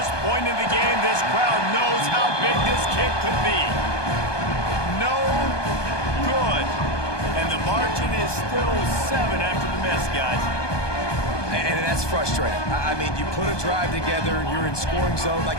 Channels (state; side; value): late; right; 1.2 ms